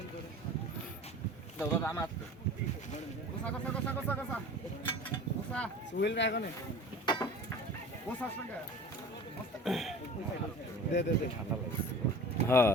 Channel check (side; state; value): both; normal; correlation 0.40